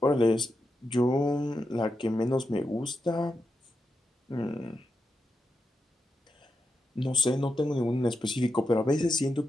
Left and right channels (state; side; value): normal; both; correlation 0.87